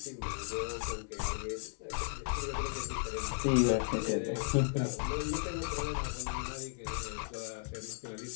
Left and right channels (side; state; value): right; silent; 54 dB below the other